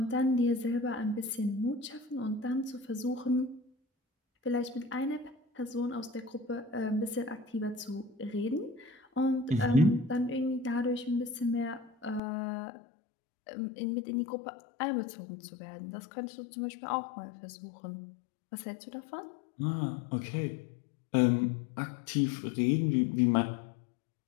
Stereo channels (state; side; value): drops out; right; at 12.2 s